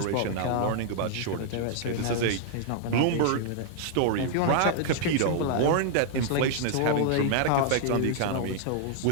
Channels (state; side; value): different; both; correlation -0.01